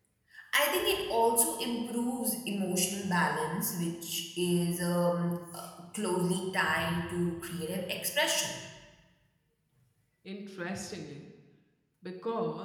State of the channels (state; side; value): identical; both; correlation 1.00